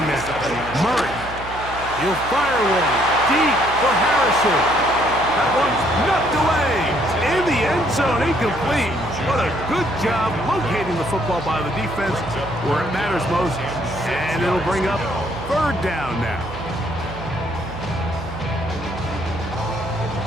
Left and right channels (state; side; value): noise; right; hum, 13 dB below the sound